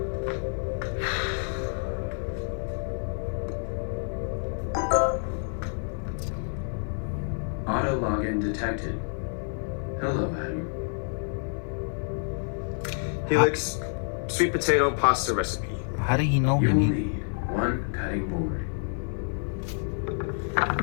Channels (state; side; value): silent; right; 59 dB below the other